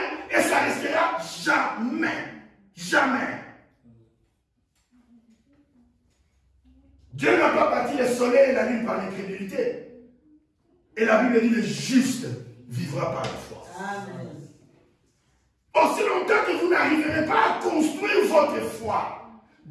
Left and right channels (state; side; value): identical; both; correlation 1.00